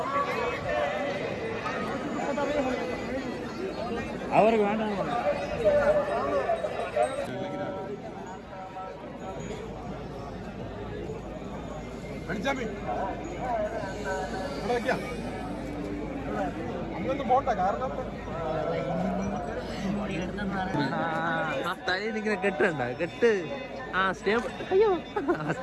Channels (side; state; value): both; identical; correlation 1.00